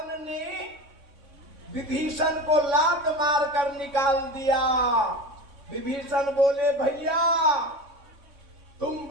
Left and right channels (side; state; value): left; late; 3.6 ms